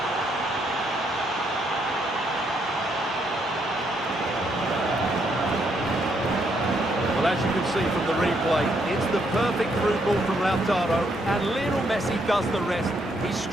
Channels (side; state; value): both; normal; correlation 0.74